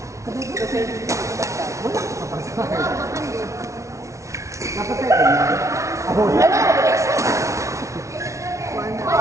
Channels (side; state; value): left; late; 0.14 ms